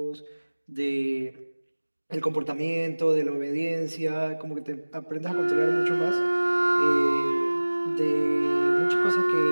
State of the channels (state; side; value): inverted; both; correlation -1.00